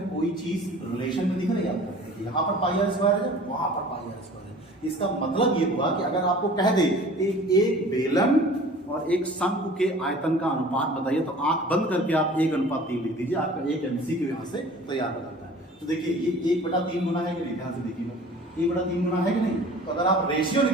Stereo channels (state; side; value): normal; both; correlation 0.45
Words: कोई चीज रिलेशन में दिख रही है आपको? यहाँ पर पाई आर स्क्वायर है, वहां पर पाई आर स्क्वायर है। इसका मतलब ये हुआ कि अगर आपको कह दे एक बेलन और एक शंख के आयतन का अनुपात बताइए, तो आंख बंद करके आप 1:3 लिख दीजिए, आपका एक MCQ यहाँ से तैयार हो जाता है। तो देखिए ये 1/3 गुना है कि नहीं, ध्यान से देखिएगा, 1/3 गुना है कि नहीं। तो अगर आप रेशियो